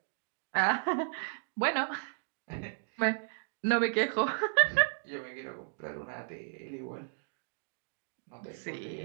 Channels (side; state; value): left; silent; digital silence